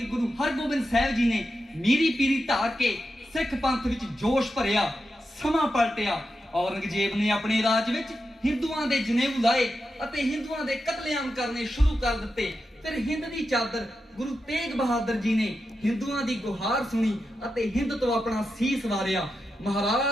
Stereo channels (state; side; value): normal; both; correlation 0.88